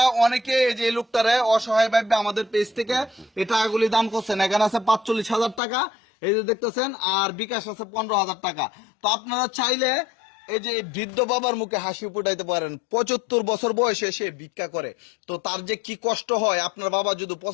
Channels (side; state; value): right; drops out; at 5.6 s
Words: অনেকে এই যে লোকটারে অসহায় ভাবে আমাদের পেজ থেকে এই টাকাগুলি দান করছেন। এখানে আছে 45,000 টাকা, এই যে দেখতেছেন, আর বিকাশ আছে 15,000 টাকা। তো আপনারা চাইলে এই যে বৃদ্ধ বাবার মুখে হাসি ফুটাইতে পারেন। 75 বছর বয়সে সে ভিক্ষা করে, তো তার যে কি কষ্ট হয়। আপনার বাবা যদি